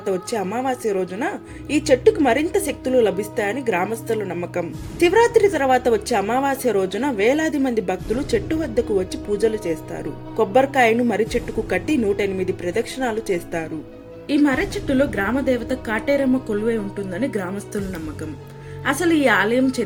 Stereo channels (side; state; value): both; identical; correlation 1.00